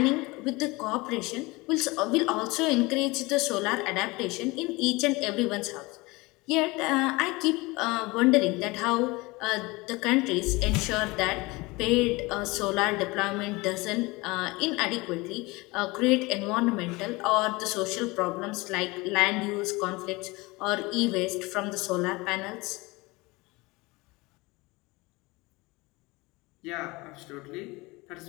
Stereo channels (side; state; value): right; quieter; 23.4 dB